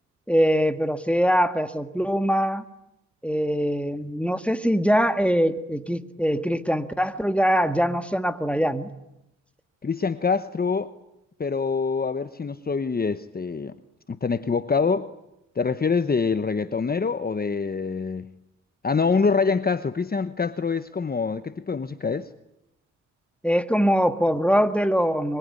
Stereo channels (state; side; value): normal; both; correlation 0.73